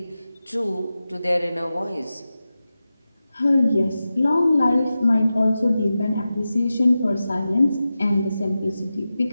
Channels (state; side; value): inverted; both; correlation -0.93